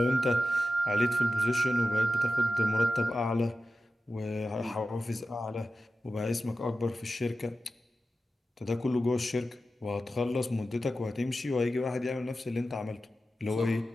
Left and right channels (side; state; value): both; normal; correlation 0.92